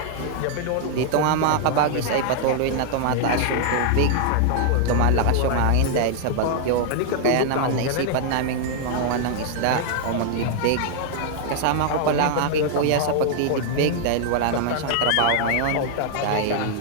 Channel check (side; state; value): both; different; correlation 0.00